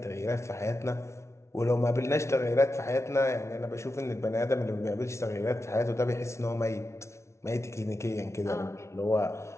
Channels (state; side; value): late; right; 0.13 ms